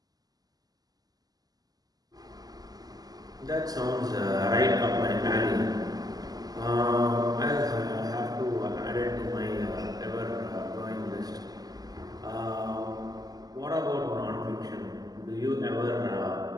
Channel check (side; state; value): left; late; 0.18 ms